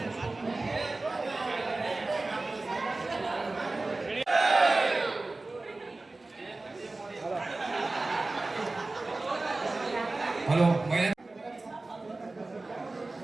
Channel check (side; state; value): left; quieter; 3.2 dB